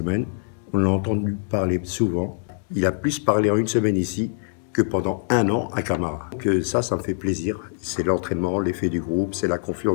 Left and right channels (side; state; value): right; silent; digital silence